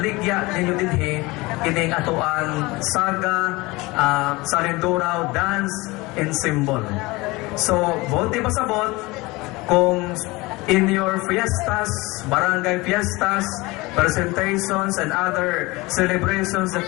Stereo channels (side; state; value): right; quieter; 22.6 dB